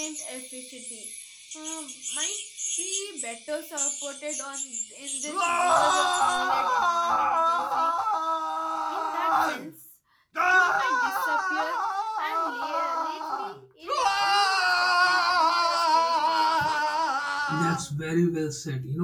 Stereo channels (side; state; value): both; identical; correlation 1.00